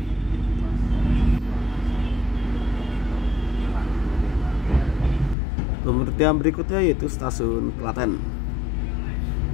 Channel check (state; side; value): drops out; right; at 5.4 s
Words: Pemberhentian berikutnya yaitu stasiun Klaten.